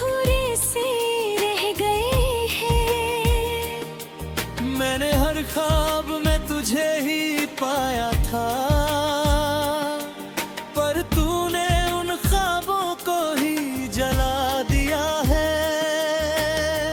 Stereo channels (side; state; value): both; identical; correlation 1.00